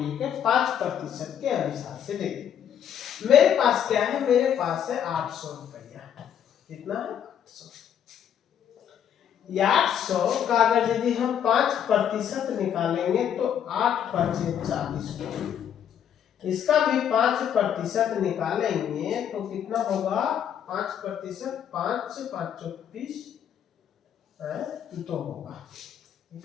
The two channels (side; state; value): right; quieter; 9.1 dB